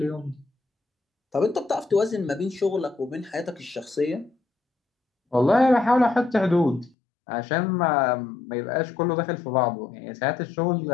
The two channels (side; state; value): right; drops out; at 6.9 s